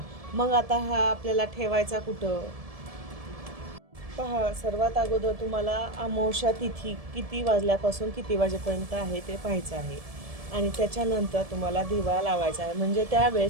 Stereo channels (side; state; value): left; late; 1.7 ms